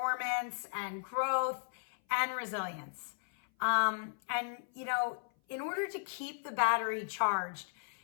and growth and resilience. In order to keep the battery charged,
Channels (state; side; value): silent; right; 54 dB below the other